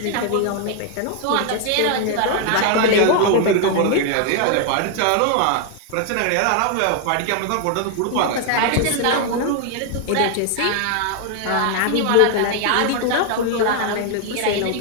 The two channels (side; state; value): both; different; correlation 0.00